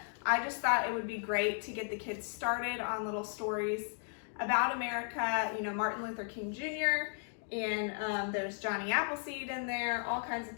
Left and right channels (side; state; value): right; silent; 54 dB below the other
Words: I just thought it would be great to get the kids started on little stories about America, you know, Martin Luther King Jr., and there's Johnny Appleseed in there, all kinds of